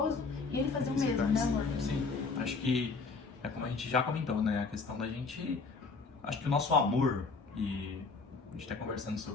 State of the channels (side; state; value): right; quieter; 4.3 dB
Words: e ele fazia o mesmo, né, amor? Sim, acho que é como a gente já comentou, né, a questão da gente... Acho que o nosso amor, e a gente tá conversando